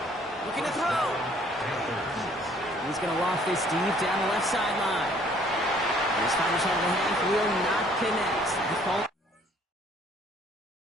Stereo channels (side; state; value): both; normal; correlation 0.60